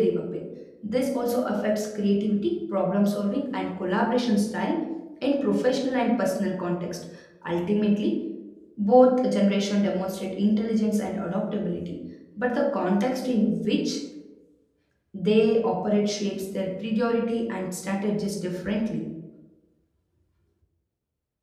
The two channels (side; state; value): both; identical; correlation 1.00